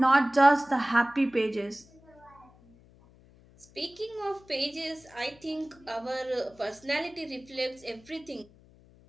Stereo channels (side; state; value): left; noise; hum, 26 dB below the sound